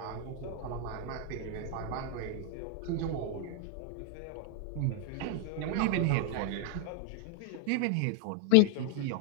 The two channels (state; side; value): different; both; correlation 0.00